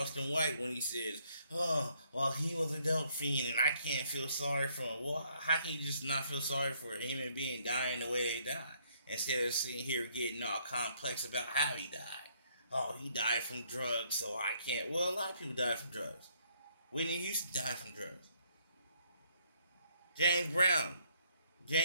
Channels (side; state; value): both; inverted; correlation -0.68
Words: White when he says, "Oh, well, he was a dope fiend, and I can't feel sorry for him." Well, how can you just not feel sorry for a human being dying the way they died, instead of sitting here getting all complex about how he died? Oh, he died from drugs, so I can't. Well, a lot of people died from drugs. Whitney Houston died from drugs. James Brown.